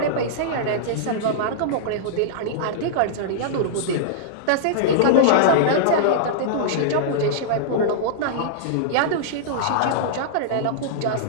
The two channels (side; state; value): both; different; correlation -0.02